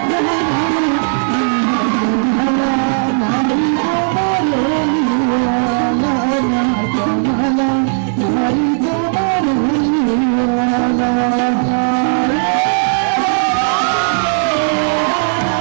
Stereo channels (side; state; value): left; silent; digital silence